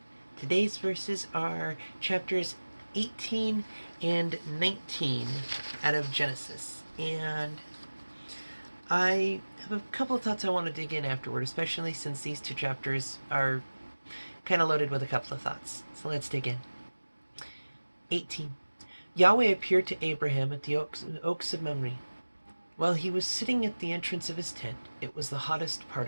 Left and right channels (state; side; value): inverted; both; correlation -1.00